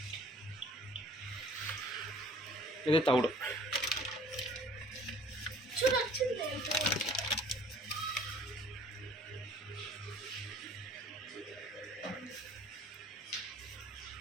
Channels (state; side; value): normal; both; correlation 0.52